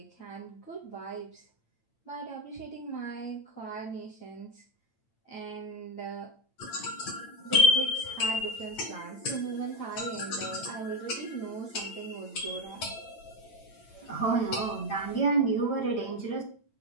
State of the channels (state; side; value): late; right; 8.9 ms